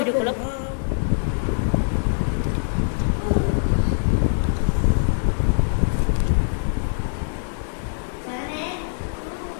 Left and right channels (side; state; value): right; silent; digital silence